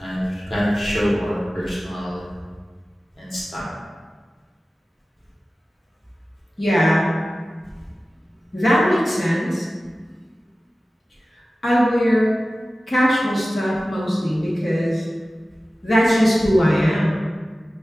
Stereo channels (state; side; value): normal; both; correlation 0.96